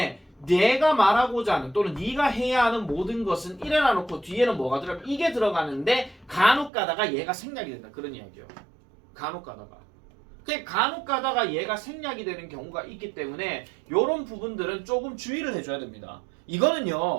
내가 말하고자 하는 또는 네가 해야 하는 모든 것은 이래 놔놓고 뒤에는 뭐가 들어가면 이게 들어가는데 간혹 가다가 얘가 생략이 된다. 그런 이야기예요. 간혹 가다가. 그 간혹 가다가 얘가 생략이 되는 경우가 있기 때문에 이런 부분들은 조금 주의를 해줘야 됩니다.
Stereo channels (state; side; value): drops out; left; at 6.7 s